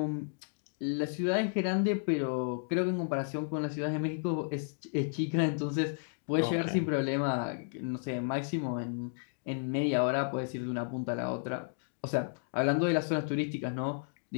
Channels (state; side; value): silent; right; digital silence